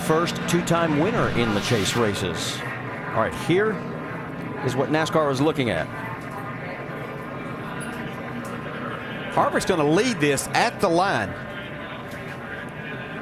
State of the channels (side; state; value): both; identical; correlation 1.00